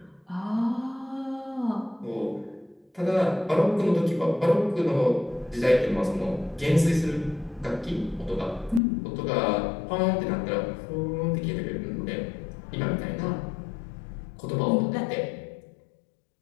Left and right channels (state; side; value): drops out; right; at 8.8 s